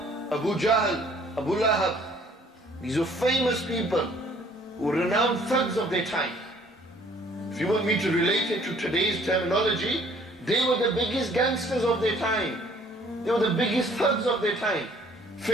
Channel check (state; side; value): normal; both; correlation 0.58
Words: Abu Jahl, Abu Lahab. These are famous people who were renowned thugs of their time. If you want me to relate it to today's terminology, they were the biggest gangsters of their time. They were the biggest thugs of their time.